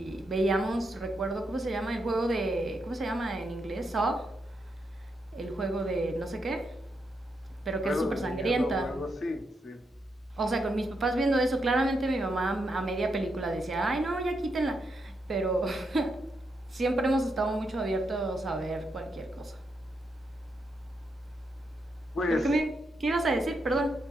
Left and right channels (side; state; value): both; normal; correlation 0.82